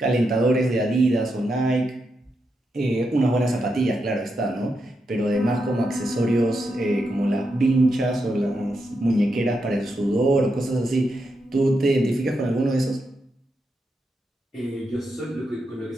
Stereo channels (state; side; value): normal; both; correlation 0.84